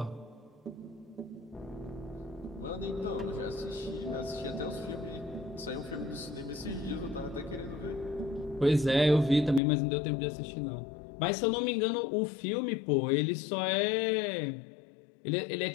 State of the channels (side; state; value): right; drops out; at 9.6 s